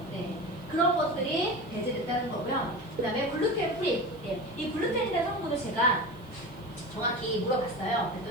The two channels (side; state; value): right; noise; hiss, 29 dB below the sound